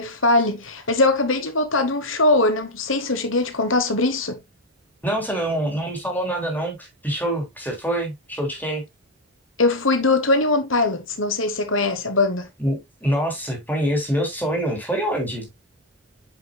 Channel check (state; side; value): normal; both; correlation 0.00